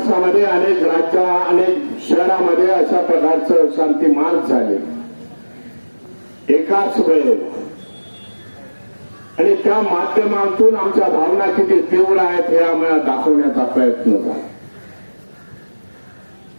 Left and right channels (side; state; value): both; inverted; correlation -1.00